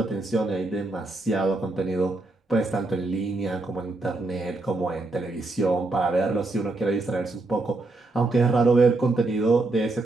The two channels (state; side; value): quieter; left; 3.1 dB